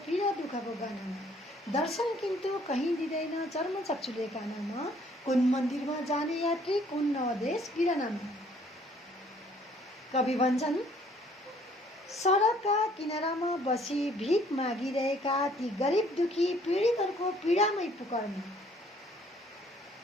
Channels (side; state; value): both; normal; correlation 0.60